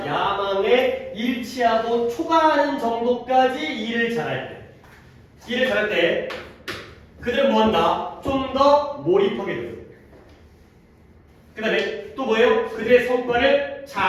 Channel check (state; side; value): identical; both; correlation 1.00